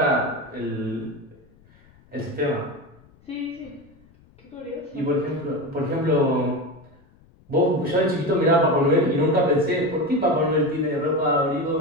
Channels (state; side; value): noise; left; rumble, 29 dB below the sound